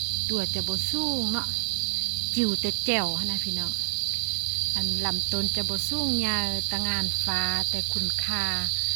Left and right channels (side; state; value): left; silent; 60 dB below the other